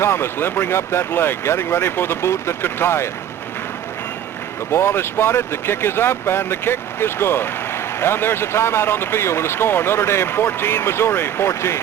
limbering up that leg, getting ready for the boot that could tie it. The ball is spotted, the kick is up, and the kick is good. And there's a timeout on the field with a score, Notre Dame 14, Missouri 14.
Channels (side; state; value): left; quieter; 10.2 dB